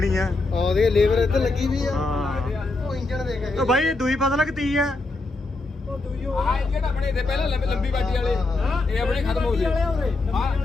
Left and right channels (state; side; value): quieter; right; 3.2 dB